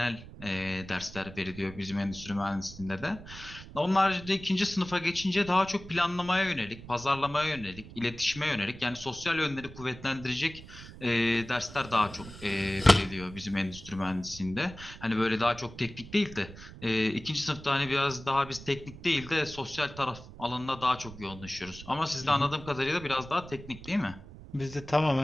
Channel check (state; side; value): noise; right; rumble, 15 dB below the sound